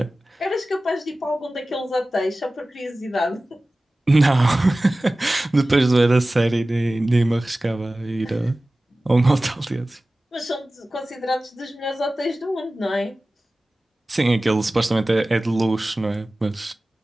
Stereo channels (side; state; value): both; normal; correlation 0.97